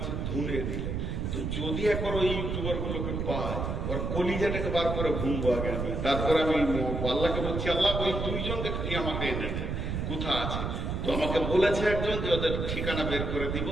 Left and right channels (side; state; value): right; noise; rumble, 2 dB below the sound